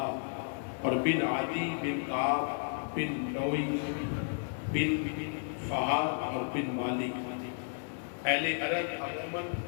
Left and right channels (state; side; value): silent; right; 56 dB below the other